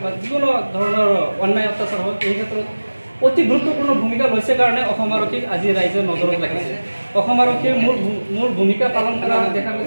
বা যিকোনো ধৰণৰ অন্যায় অত্যাচাৰ হওক, এই ক্ষেত্ৰত অতি গুৰুত্বপূৰ্ণ ভূমিকা লৈছে কাৰণে অসম আৰক্ষীক আজি ৰাইজে নজৰত ৰাখিছে। অসম আৰক্ষীৰ মূল ভূমিকা পালন কৰা দেখা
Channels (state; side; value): inverted; both; correlation -1.00